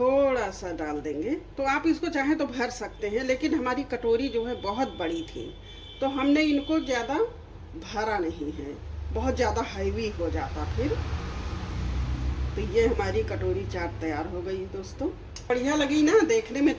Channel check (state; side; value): identical; both; correlation 1.00